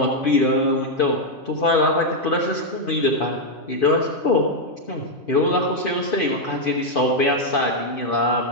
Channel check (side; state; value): right; late; 2.5 ms